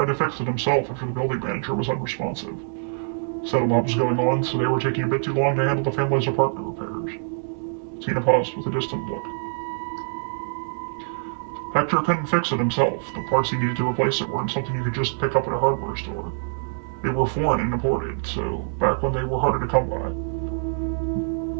to fix it himself after the building manager was unresponsive. Said a lot was going on, so they were taking a bit too long to handle the family's apartment repairs. Tina paused with a distant look. Hector couldn't fix it himself. The parts he needed to replace it weren't something you could just pick up at a hardware store. They were foreign and imported, so back when they were harder to come by.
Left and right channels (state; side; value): silent; left; 62 dB below the other